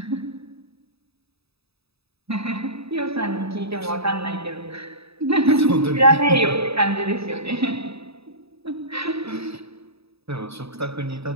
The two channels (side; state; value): left; late; 0.78 ms